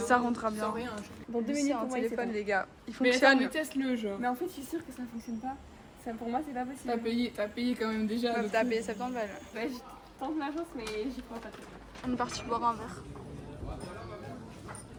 rentrera bien. sans rien. Dans 2 minutes un téléphone les gars. Il Mais fonctionne. attends, teste-le genre. Mais en fait, je suis sûre que ça fonctionne pas. Ça, pour moi, c'est pas possible. T'as payé quand même déjà. Meuf, le t'as coup. payé 70 balles. Bah, je tente ma chance, mais j'y crois pas trop. On est parti boire un verre.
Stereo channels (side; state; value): both; identical; correlation 1.00